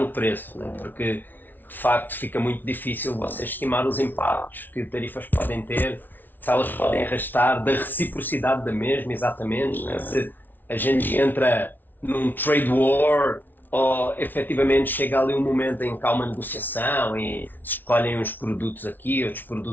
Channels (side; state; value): right; late; 0.088 ms